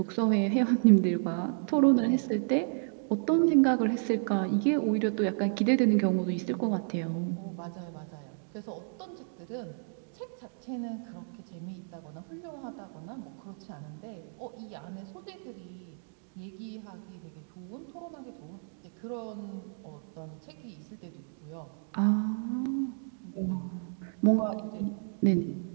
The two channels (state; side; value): silent; left; digital silence